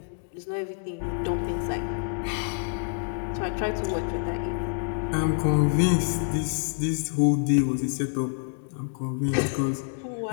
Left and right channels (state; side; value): silent; right; digital silence